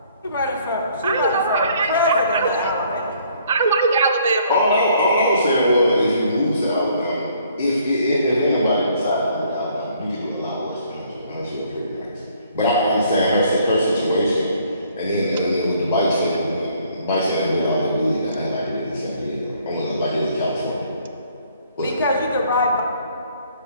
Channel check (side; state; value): both; inverted; correlation -0.63